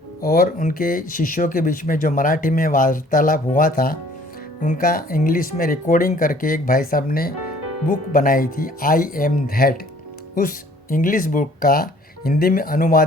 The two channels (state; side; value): normal; both; correlation 0.56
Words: और उनके शिष्यों के बीच में जो मराठी में वार्तालाप हुआ था, उनका इंग्लिश में रिकॉर्डिंग करके एक भाई साहब ने बुक बनाई थी, आई एम दैट। उस इंग्लिश बुक का हिंदी में